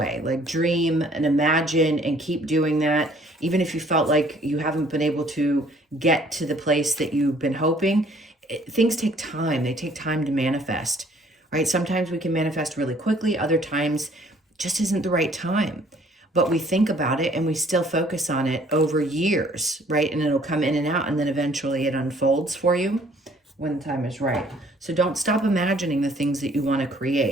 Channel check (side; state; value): both; normal; correlation 0.59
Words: Like dream and imagine and keep doing that. Even if you felt like you haven't been able to get to the place that you've been hoping, things take time. They take time to manifest, right? Sometimes we can manifest really quickly. Other times just isn't the right time. But we think about it and we still focus on it over years, right? And it'll come in and out, and then eventually it unfolds for you when the time is right. So don't stop imagining the things that you want to